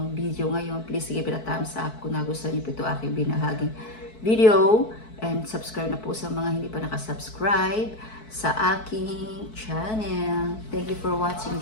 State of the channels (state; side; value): late; right; 4.6 ms